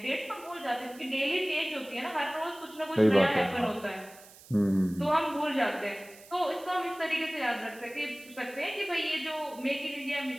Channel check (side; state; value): right; noise; hiss, 21 dB below the sound